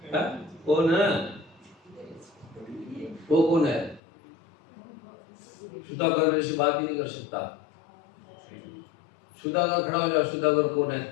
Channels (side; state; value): right; drops out; at 4.0 s